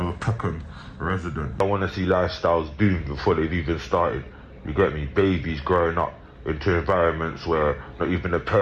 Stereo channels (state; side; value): identical; both; correlation 1.00